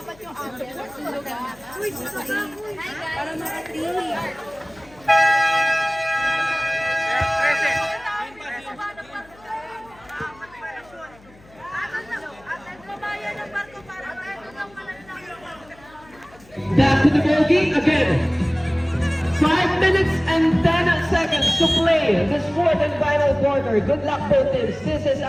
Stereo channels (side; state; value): left; noise; hum, 26 dB below the sound